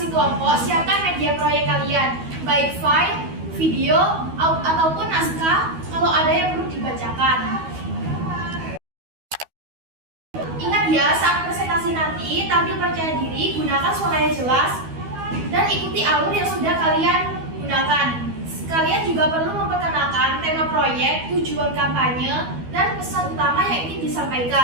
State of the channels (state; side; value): late; left; 12 ms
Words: kelompok siapkan media proyek kalian, baik file, video, ataupun naskah kalau ada yang perlu dibacakan. Ingat ya, saat presentasi nanti, tampil percaya diri, gunakan suara yang jelas, dan ikuti alur yang sudah kalian gunakan. Kalian juga perlu memperkenalkan tema proyek, tujuan kampanye, dan pesan utama yang ingin